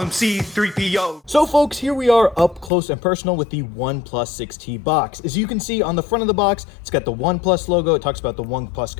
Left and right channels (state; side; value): drops out; right; at 2.7 s